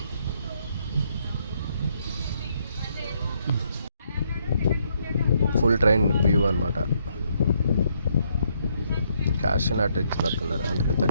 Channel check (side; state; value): both; inverted; correlation -0.73